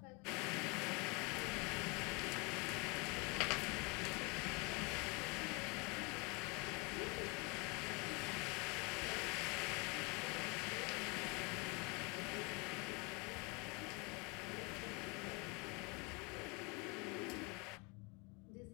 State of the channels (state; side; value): quieter; right; 28.9 dB